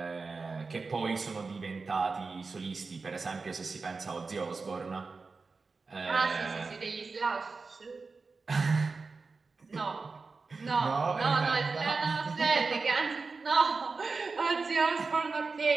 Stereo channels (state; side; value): quieter; left; 4.3 dB